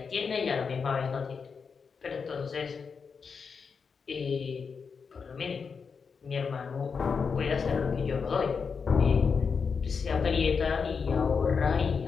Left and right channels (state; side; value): quieter; right; 5.6 dB